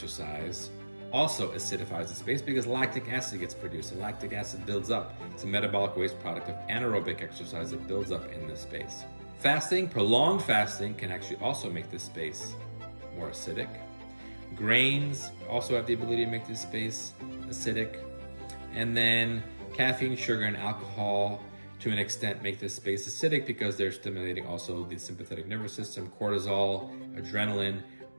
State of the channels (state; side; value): inverted; both; correlation -1.00